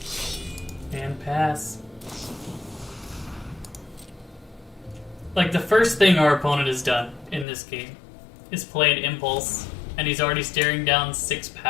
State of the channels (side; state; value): right; drops out; at 7.5 s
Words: And pass. Like, the first thing our opponent has done in this game is play an impulse, and he's already staring down 6